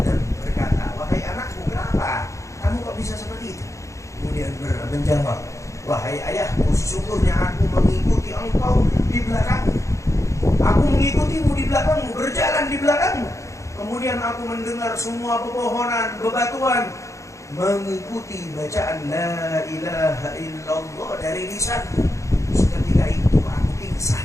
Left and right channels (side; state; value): right; late; 0.15 ms